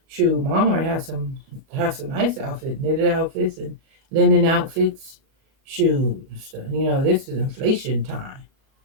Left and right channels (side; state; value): left; late; 37 ms